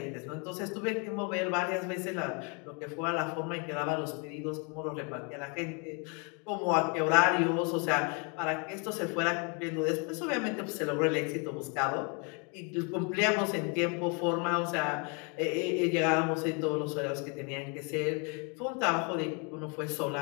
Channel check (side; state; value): right; quieter; 34.5 dB